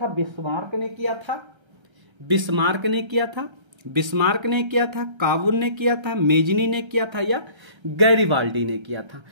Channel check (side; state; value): left; late; 1.3 ms